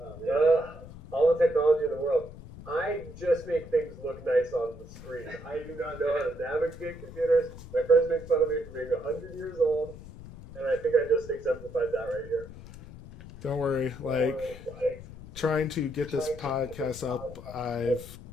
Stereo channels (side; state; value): left; noise; rumble, 19 dB below the sound